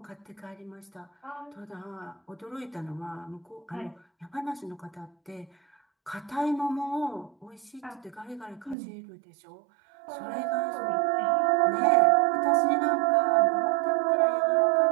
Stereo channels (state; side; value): drops out; left; at 8.8 s